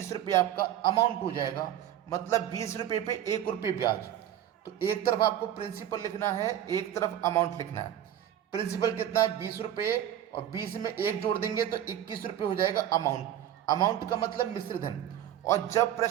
रुपये आपका अमाउंट हो जाएगा। मतलब 20 रुपये पे 1 रुपये ब्याज। तो एक तरफ आपको प्रिंसिपल लिखना है, एक तरफ अमाउंट लिखना है। प्रिंसिपल कितना है 20 रुपये, और 20 में 1 जोड़ देंगे तो 21 रुपये हो जाएगा अमाउंट। अमाउंट का मतलब मिश्र धन। और जब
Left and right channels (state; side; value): quieter; left; 11.2 dB